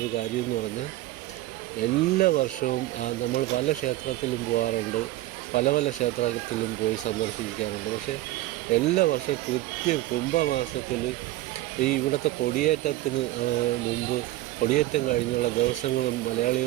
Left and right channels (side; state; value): left; quieter; 16.8 dB